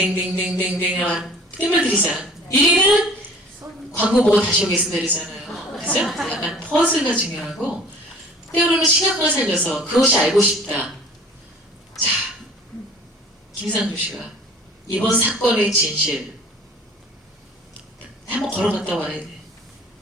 뜸을 들이자 1위는 광고 보고 다시 오겠습니다 이러잖아요. 그죠? 약간 퍼즐가 중요하고 때로는 시각을 살려서 그것이 알고 싶다. 자, 김상조 씨가 이번 사건의 진실 한번 걸어갔다 와야 돼.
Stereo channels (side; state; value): both; normal; correlation 0.48